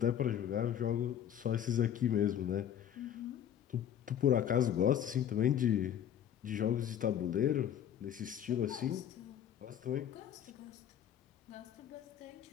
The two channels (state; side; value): quieter; right; 9.8 dB